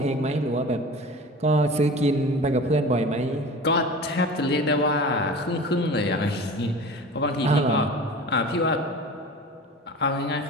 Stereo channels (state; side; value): normal; both; correlation 0.36